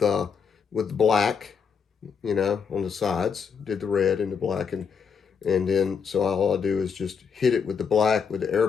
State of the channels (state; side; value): quieter; right; 6.4 dB